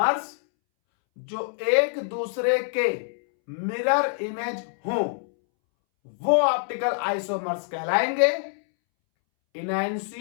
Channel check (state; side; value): silent; right; 61 dB below the other